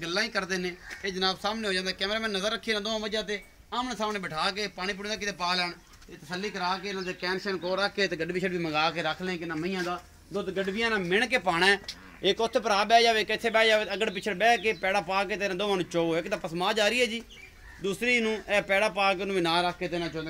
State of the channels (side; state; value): both; identical; correlation 1.00